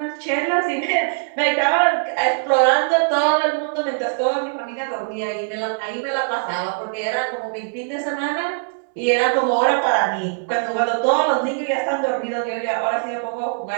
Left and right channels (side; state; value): left; silent; 65 dB below the other